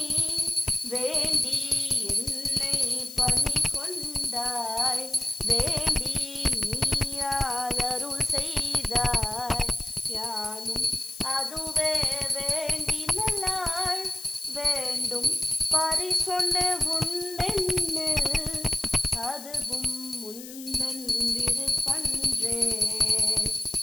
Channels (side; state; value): left; noise; hiss, 13 dB below the sound